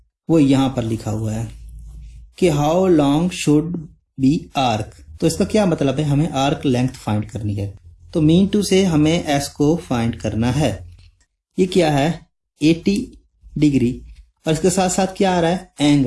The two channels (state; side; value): identical; both; correlation 1.00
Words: वो यहां पर लिखा हुआ है कि how long should be arc. तो इसका क्या मतलब है, हमें आर्क लेंथ फाइंड करनी है। तो मीन टू से हमें एस को फाइंड करना है। ये क्या है 80 डिग्री, और इसके साथ साथ क्या आ रहा है